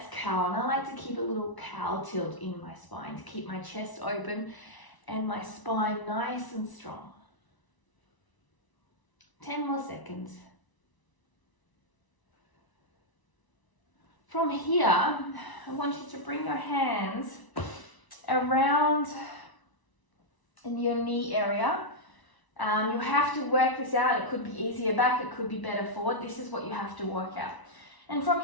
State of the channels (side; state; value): right; late; 1.0 ms